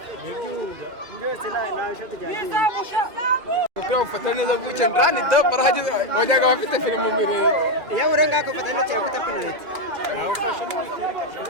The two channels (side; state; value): left; late; 2.1 ms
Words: byose na ishoti ryagiye ukora ufata neza buke ndani da barahageze wajyaga bafite filmu mbere ya urenga ko fata neza yakuta penalty ufashe